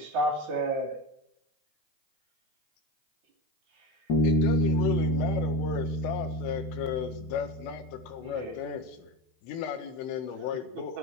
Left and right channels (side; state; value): both; normal; correlation 0.23